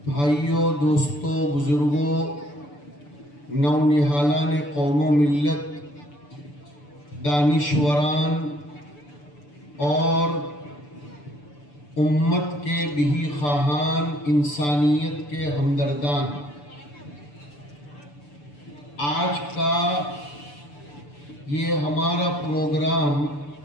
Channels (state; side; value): late; right; 6.9 ms